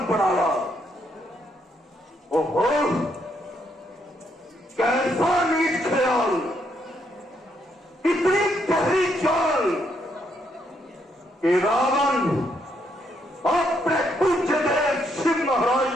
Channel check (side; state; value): both; normal; correlation 0.75